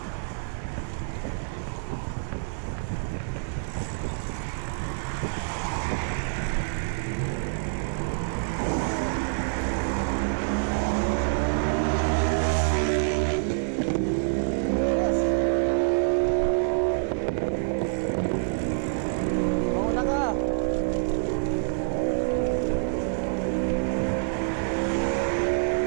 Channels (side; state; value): left; silent; 60 dB below the other